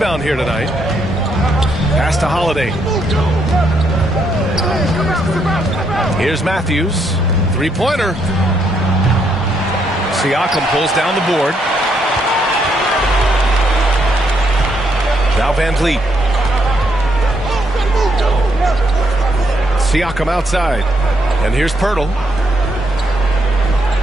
here tonight. Pass to Holiday. Here's Matthews. 3-pointer. Siakam pulls down the board. Now Van Vliet. Siakam outside. And here's Poeltl.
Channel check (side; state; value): both; normal; correlation 0.75